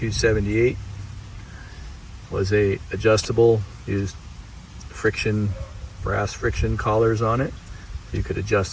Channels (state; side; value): identical; both; correlation 1.00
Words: was a adjustable, used brass friction collars on it. You could